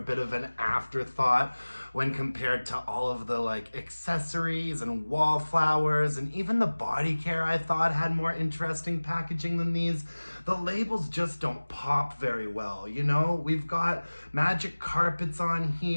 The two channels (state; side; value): inverted; both; correlation -1.00